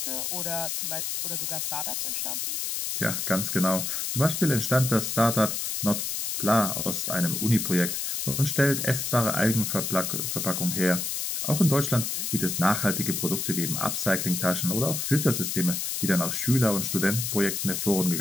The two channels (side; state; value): left; noise; hiss, 2 dB below the sound